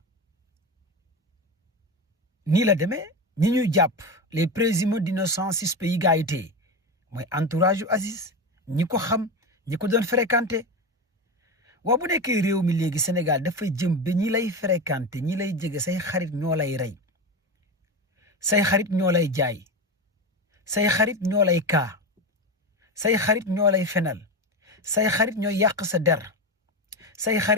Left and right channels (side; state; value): both; normal; correlation 0.19